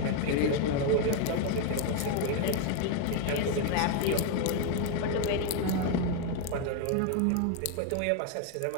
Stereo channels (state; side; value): different; both; correlation 0.01